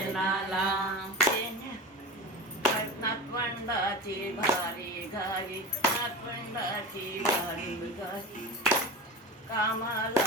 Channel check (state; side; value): normal; both; correlation 0.29